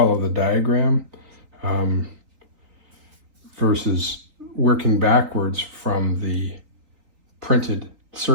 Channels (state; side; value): late; left; 3.8 ms